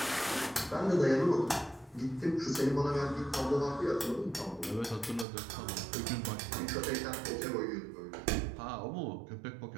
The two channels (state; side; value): drops out; left; at 5.2 s